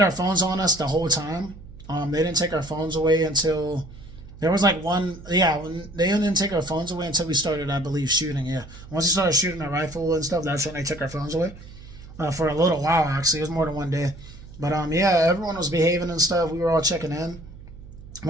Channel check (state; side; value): noise; right; hum, 17 dB below the sound